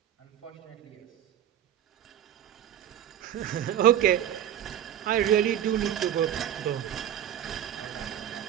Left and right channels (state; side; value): quieter; left; 10.5 dB